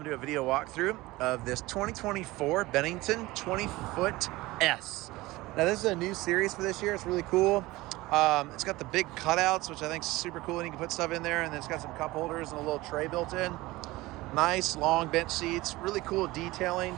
to do a video walkthrough of this 2024 Bennington 20S. Now, this is a new series for this year. It's really cool. It's got the big cutouts, which I think is super cool, and you can put stuff in there, and then it's got some cup holders and a little tray built in. Nice, long bench seats. Really cool detailing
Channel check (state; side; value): quieter; left; 19.7 dB